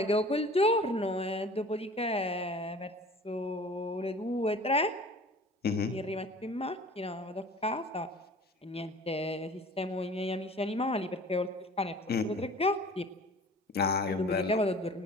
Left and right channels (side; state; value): both; normal; correlation 0.45